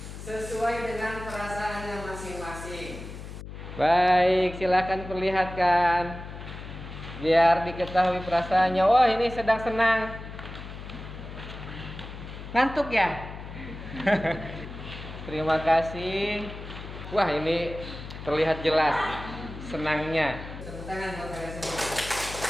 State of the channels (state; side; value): noise; left; hum, 11 dB below the sound